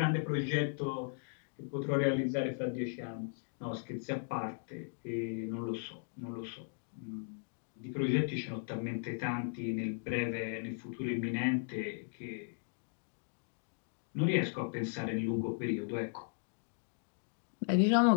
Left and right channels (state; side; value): silent; right; digital silence